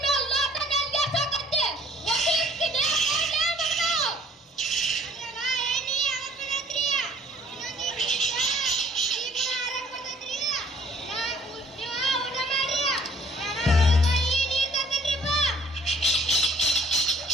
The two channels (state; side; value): normal; both; correlation 0.58